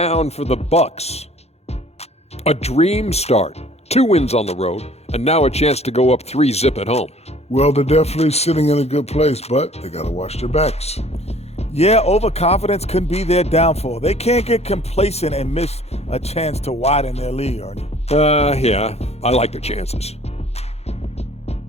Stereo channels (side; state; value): right; late; 0.31 ms